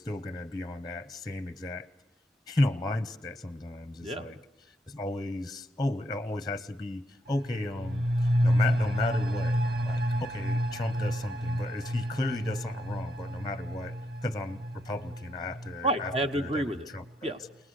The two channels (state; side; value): normal; both; correlation 0.78